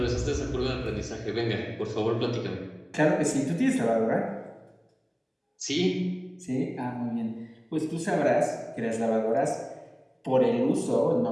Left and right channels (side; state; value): both; identical; correlation 1.00